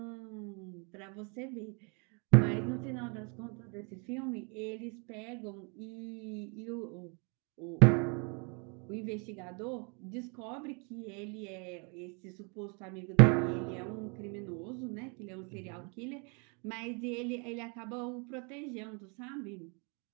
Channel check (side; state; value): left; quieter; 34.3 dB